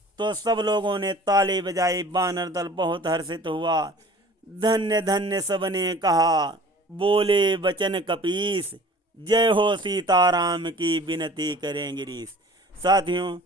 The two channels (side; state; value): both; normal; correlation 0.46